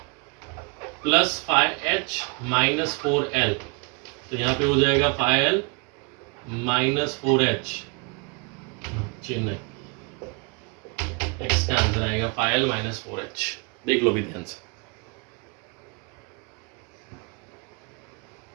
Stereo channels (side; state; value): left; quieter; 33.2 dB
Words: plus 5H minus 4L। तो यहाँ पे हो जाएगा 5L माइनस 4H, चिन्ह है, x का आंसर आएगा 5L माइनस 4H। देख लो भी ध्यान से।